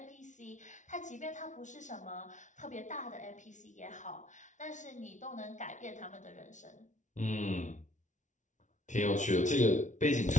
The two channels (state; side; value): late; right; 0.36 ms